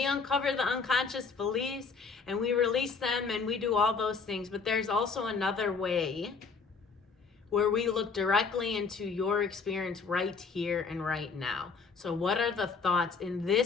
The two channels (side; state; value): right; quieter; 4.9 dB